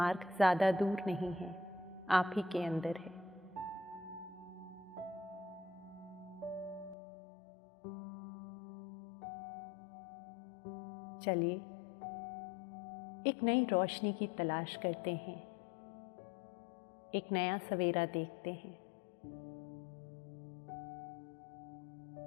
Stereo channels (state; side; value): drops out; right; at 7.0 s